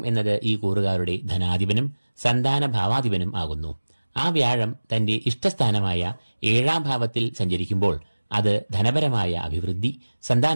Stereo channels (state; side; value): inverted; both; correlation -1.00